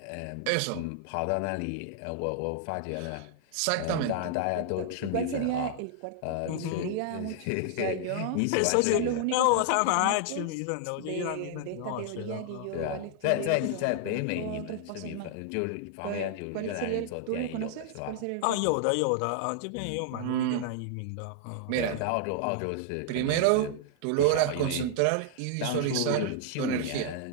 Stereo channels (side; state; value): both; different; correlation -0.01